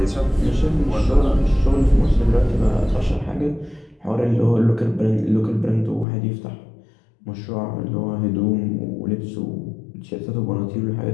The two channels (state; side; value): drops out; right; at 6.1 s